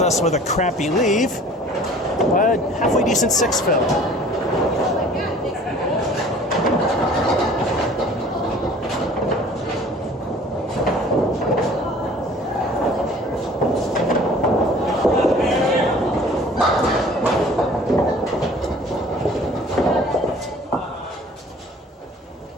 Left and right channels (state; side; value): normal; both; correlation 0.49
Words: us with a crappy leave, but halfway decent 6 fill.